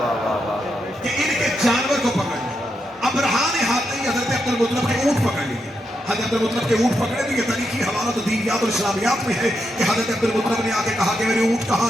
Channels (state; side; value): normal; both; correlation 0.83